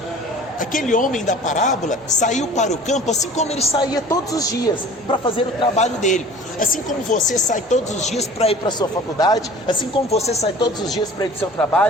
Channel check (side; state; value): both; normal; correlation 0.45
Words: Aquele homem da parábola saiu para o campo assim como ele saía todos os dias para fazer o trabalho dele. Assim como você sai todos os dias para ir para a sua faculdade, assim como você sai todos os dias para ir para o seu